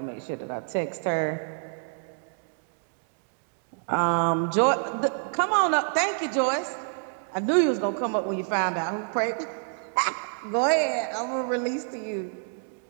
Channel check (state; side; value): silent; left; 60 dB below the other